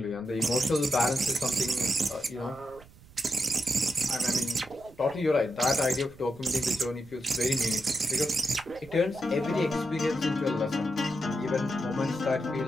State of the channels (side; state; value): right; noise; rumble, 23 dB below the sound